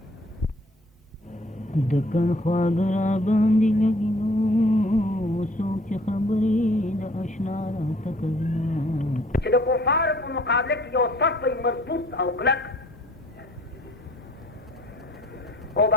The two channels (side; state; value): both; normal; correlation 0.55